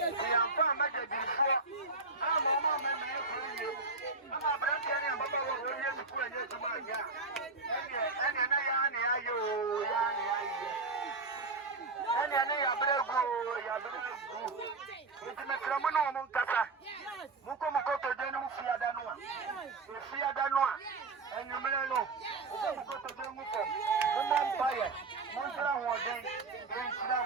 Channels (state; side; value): quieter; left; 3.8 dB